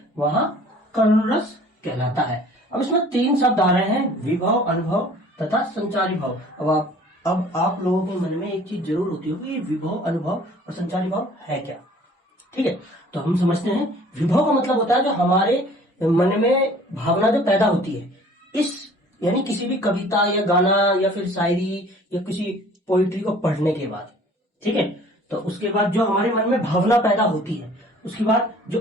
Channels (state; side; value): normal; both; correlation 0.51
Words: वहां करुण रस कहलाता है। अब इसमें तीन शब्द आ रहे हैं, विभव, अनुभव तथा संचारी भाव। अब आप लोगों के मन में एक चीज जरूर होती होगी, ये विभव, अनुभव और संचारी भाव है क्या। ठीक है, तो हम समझते हैं। विभव का मतलब होता है जो हमारे मन में भावना जो पैदा होती है, इस यानी किसी भी कविता या गाना या फिर शायरी या किसी पोइट्री को पढ़ने के बाद। ठीक है, तो उसके बाद जो हमारे मन में भावना पैदा होती है, उसके बाद